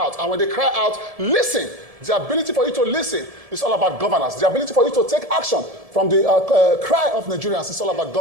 And when they cry out, listen. The ability for you to listen is all about governance. The ability for you to take action from the cry of Nigerians is all about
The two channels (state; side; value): late; left; 1.7 ms